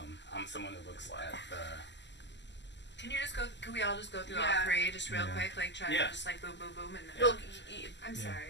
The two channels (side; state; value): right; late; 0.51 ms